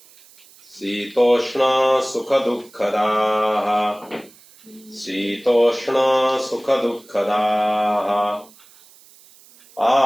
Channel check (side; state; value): right; noise; hiss, 26 dB below the sound